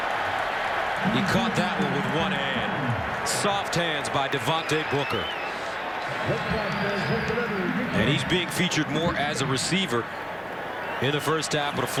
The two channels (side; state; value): both; identical; correlation 1.00